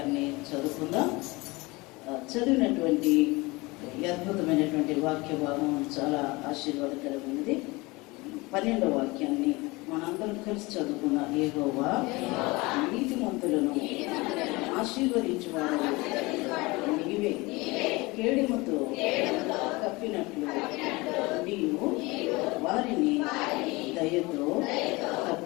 చదువుకుందాం. చదివినటువంటి అద్భుతమైనటువంటి వాక్య భాగం చాలా ఆశీర్వాదకరమైనది. 12వ వాక్యాన్ని మనందరం కలిసి చదువుకున్న యెహోవా నీతిమంతులను ఆశీర్వదించువాడు నీవే. కేడుముతో కప్పినట్లు నీవు వారిని దయతో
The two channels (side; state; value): right; quieter; 23.5 dB